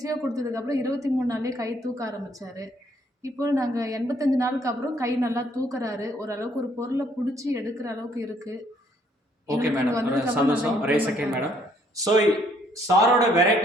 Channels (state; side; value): normal; both; correlation 0.66